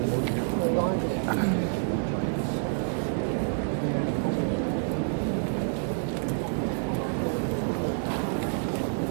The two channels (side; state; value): left; silent; digital silence